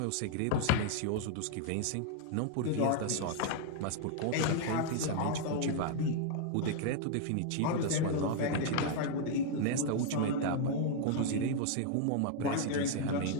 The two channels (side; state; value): both; different; correlation 0.00